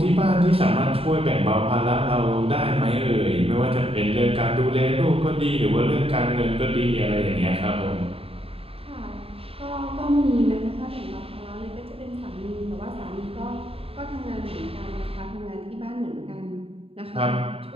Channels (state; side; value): late; left; 0.28 ms